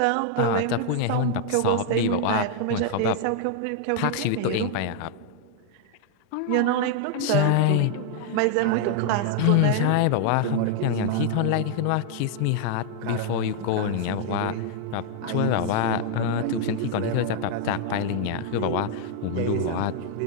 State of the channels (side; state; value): both; different; correlation 0.00